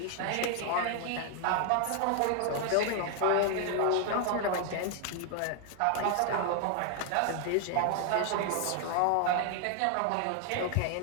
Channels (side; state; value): both; different; correlation 0.00